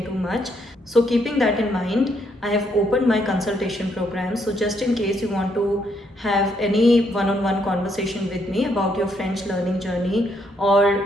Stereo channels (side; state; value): both; normal; correlation 0.73